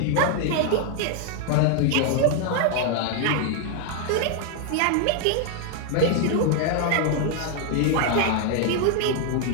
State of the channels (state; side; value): different; both; correlation 0.00